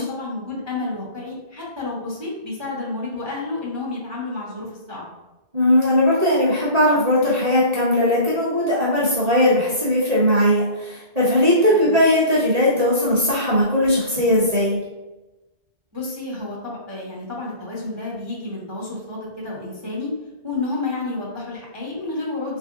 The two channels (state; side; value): late; left; 1.8 ms